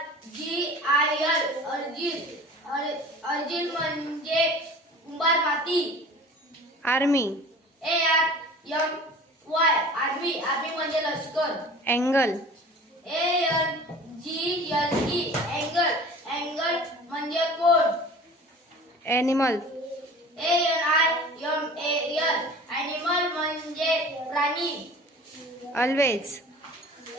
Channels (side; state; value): both; normal; correlation 0.42